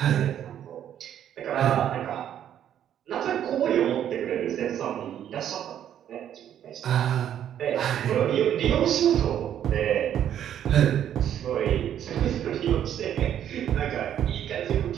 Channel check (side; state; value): left; quieter; 10.2 dB